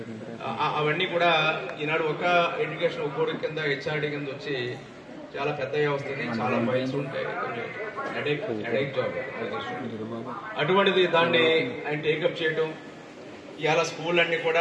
అవన్నీ కూడా ఈనాడు ఒక ఎడ్యుకేషన్ ఒక్కోడి కింద హెచ్ఆర్డీ కింద వచ్చి చాలా పెద్ద వస్తుంది, చాలా ఫైల్స్ ఉంటాయి, హెడేక్ జాబ్. అటువంటిది దాన్ని ఆయన టేకప్ చేయడం, ఇవాళ స్కూల్ అన్ని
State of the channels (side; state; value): both; identical; correlation 1.00